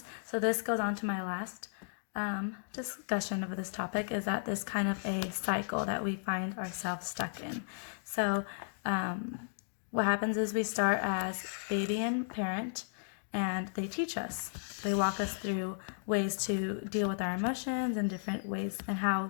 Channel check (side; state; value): right; silent; digital silence